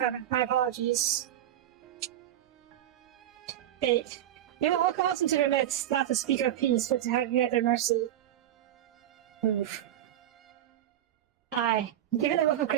my apologies. Fate. They will welcome us into their midst, not to speak of peace, but to have you at their mercy. Oof. Aye, given the wealth of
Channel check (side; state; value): left; quieter; 12.1 dB